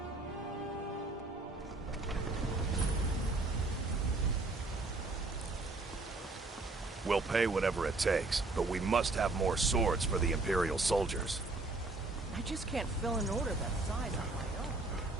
We'll pay whatever it takes, but we must have more swords for the Imperial soldiers. I just can't fill an order that size on my own.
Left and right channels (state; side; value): quieter; left; 3.3 dB